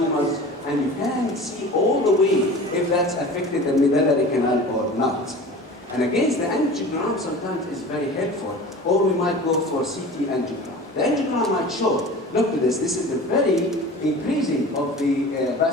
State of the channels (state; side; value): normal; both; correlation 0.38